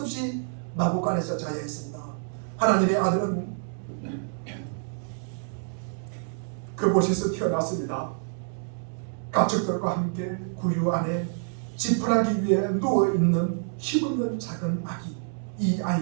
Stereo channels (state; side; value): silent; left; 60 dB below the other